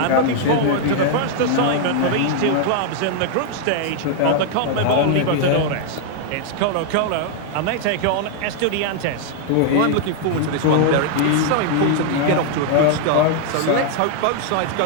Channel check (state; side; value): different; both; correlation 0.00